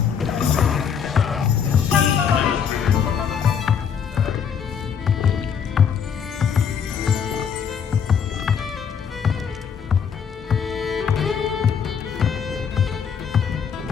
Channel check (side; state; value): right; quieter; 7.2 dB